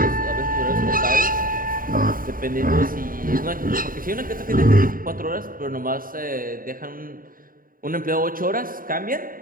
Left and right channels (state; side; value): late; left; 0.41 ms